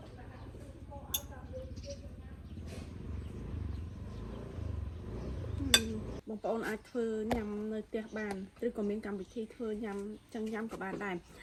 បងប្អូនអាចធ្វើញ៉ាំនៅផ្ទះបានឬក៏មានកម្មវិធីធ្វើញ៉ាំចឹងញ៉ាំក៏បានដែរ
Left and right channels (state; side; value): identical; both; correlation 1.00